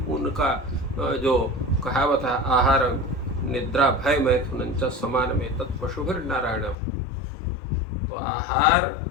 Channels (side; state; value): right; drops out; at 6.8 s